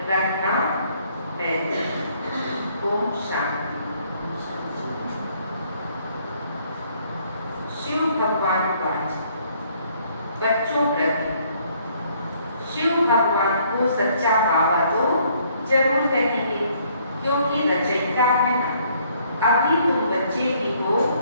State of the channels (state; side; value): inverted; both; correlation -0.65